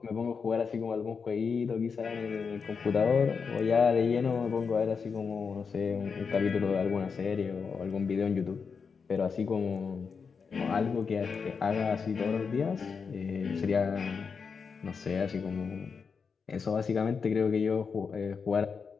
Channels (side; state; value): right; quieter; 5.6 dB